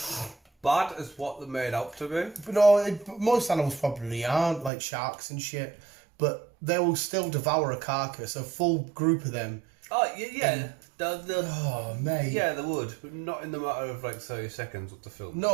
bad as what they're made out to be. But no, most animals probably aren't, like sharks and shit. But they will still devour a carcass, a full group of them. Oh, yeah. Oh, mate. Yeah, they would, but not in the matter of like 30 seconds of the film.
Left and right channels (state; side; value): drops out; left; at 4.7 s